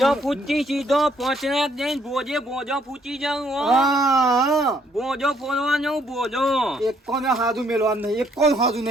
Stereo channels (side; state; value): both; normal; correlation 0.68